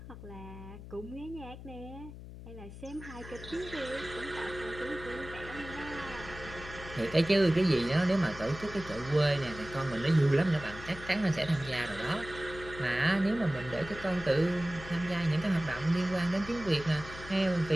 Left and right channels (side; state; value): left; noise; hum, 13 dB below the sound